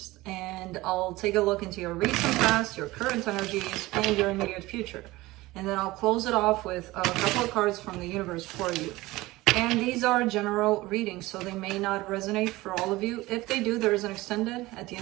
And I'll take a look into your recent past, your current energies, and your immediate future. And then I'll close it off with a couple of cards from the universe for you. And these are general readings, so they may not resonate for all of you. If they do, there is an extended at the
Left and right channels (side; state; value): left; quieter; 19.4 dB